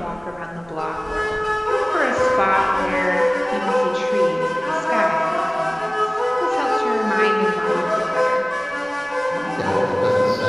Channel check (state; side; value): noise; right; rumble, 26 dB below the sound